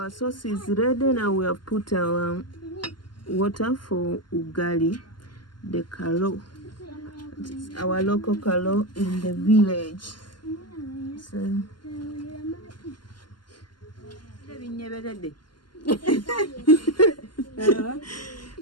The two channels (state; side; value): late; right; 0.71 ms